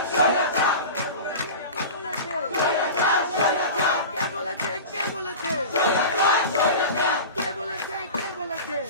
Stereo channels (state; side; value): inverted; both; correlation -0.31